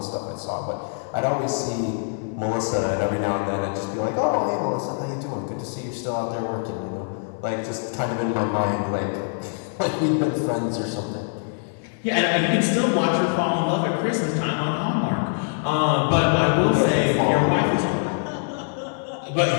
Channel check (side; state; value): right; silent; 57 dB below the other